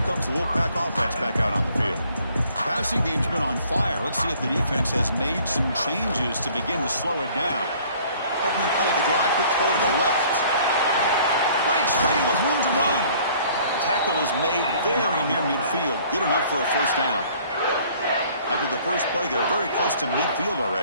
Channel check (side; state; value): both; inverted; correlation -0.56